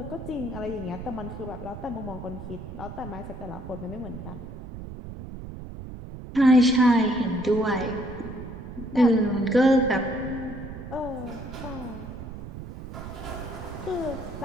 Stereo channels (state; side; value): noise; right; rumble, 11 dB below the sound